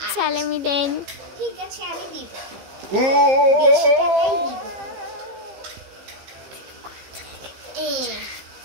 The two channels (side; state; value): left; late; 15 ms